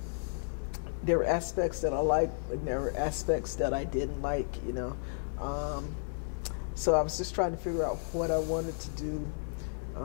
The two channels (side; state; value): right; silent; 56 dB below the other